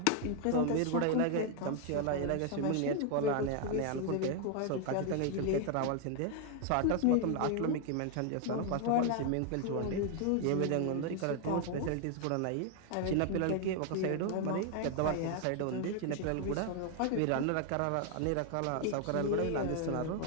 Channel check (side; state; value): both; different; correlation 0.00